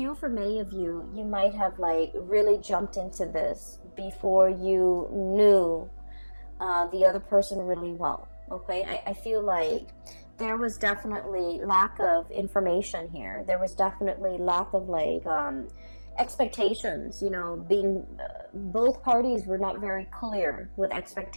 for many of you, you might have like really jumped into this before you knew the other person really well. Okay, I feel like there was definitely lack of information here. There was definitely lack of like expectations, you know, being both parties were not very clear with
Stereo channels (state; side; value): inverted; both; correlation -1.00